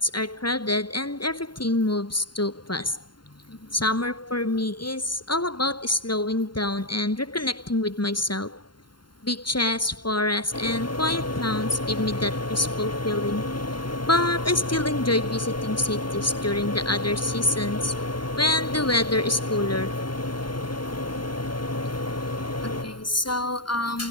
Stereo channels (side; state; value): right; late; 0.72 ms